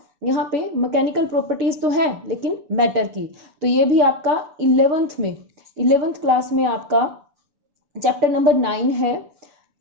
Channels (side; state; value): left; late; 6.9 ms